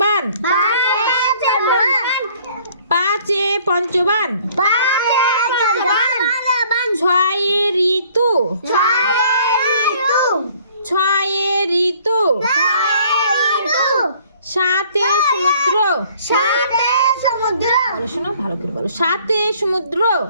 পাঁচে পঞ্চবান, ছয়ে ঋতু, ছয়ে ঋতু, সাতে সমুদ্র, বলো শোনো, ভালো করে বলো, সাতে সমুদ্র,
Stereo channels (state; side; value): inverted; both; correlation -0.58